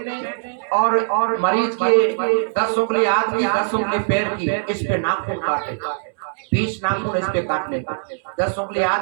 और मरीज के 10 उंगली हाथ की 10 उंगली पैर की इस पे नाखून काटे। 20 नाखून इस पे काटने का, 10 उंगली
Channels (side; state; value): left; silent; 65 dB below the other